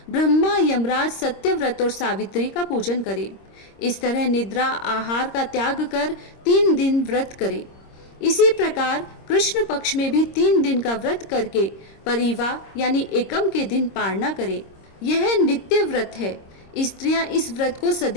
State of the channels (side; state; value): right; late; 26 ms